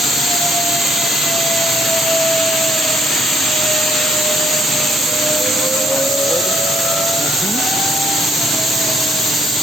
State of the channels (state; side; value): normal; both; correlation 0.67